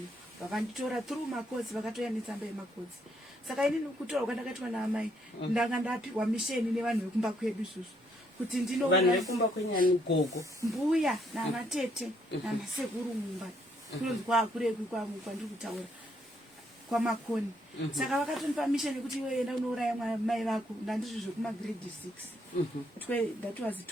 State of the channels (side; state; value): both; normal; correlation 0.71